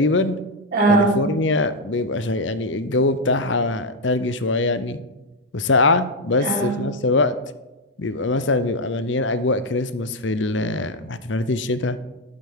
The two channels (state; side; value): normal; both; correlation 0.03